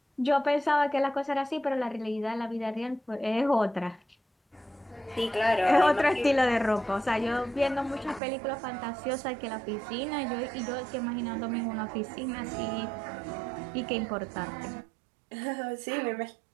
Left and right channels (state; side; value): drops out; left; at 8.2 s